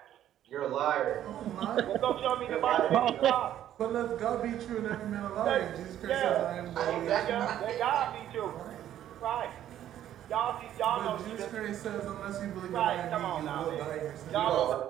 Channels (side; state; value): left; quieter; 11.5 dB